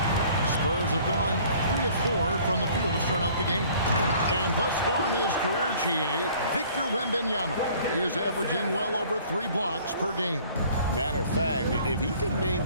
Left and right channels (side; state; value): both; inverted; correlation -0.53